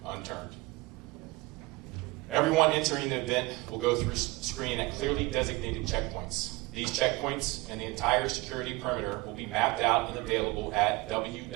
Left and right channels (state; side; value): quieter; left; 22.8 dB